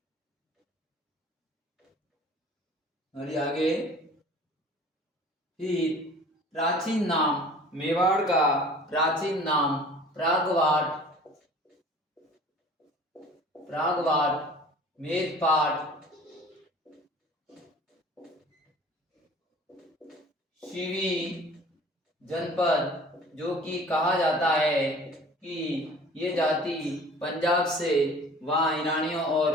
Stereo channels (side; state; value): both; normal; correlation 0.46